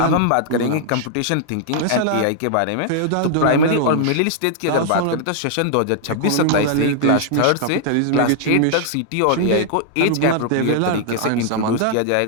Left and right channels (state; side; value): different; both; correlation -0.01